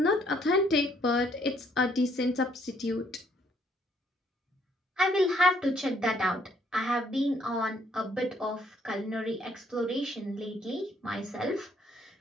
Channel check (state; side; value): normal; both; correlation 0.67